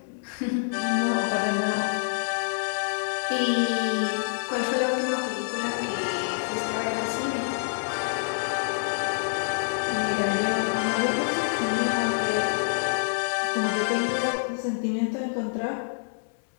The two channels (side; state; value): right; silent; 59 dB below the other